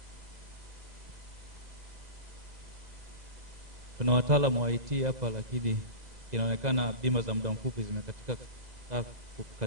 Tuna wataalamu wa IT hapa, lakini inaonekana bima za muda mfupi zimekatika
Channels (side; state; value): left; late; 2.0 ms